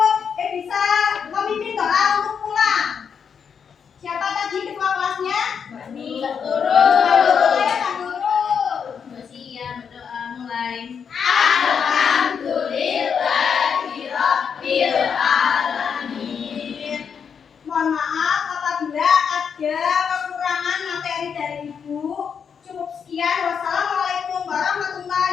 bisa memimpin doa untuk pulang. Siapa tadi ketua kelasnya? Mbak Nurul ya, Mbak Nurul. Siap berdoa mulai. Mohon maaf apabila ada kekurangan materi dari Ibu. Cukup sekian. Wassalamualaikum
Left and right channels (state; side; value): quieter; right; 6.9 dB